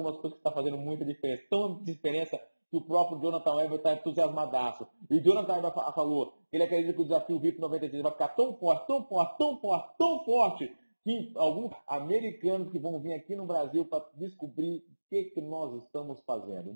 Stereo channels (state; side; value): inverted; both; correlation -1.00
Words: coisas que estão fazendo muita diferença. Tão diferença que o próprio Jonathan Weber está entusiasmadaço. E o Jonathan Weber falou que ele acredita que o desafio VIP 93 vai ficar tão forte, tão forte, tão forte, tão forte, que alguns americanos que vão vir aqui no Brasil para descobrir o que nós estamos fazendo.